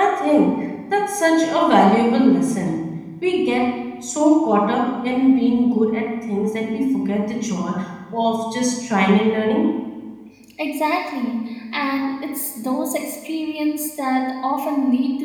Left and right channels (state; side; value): identical; both; correlation 1.00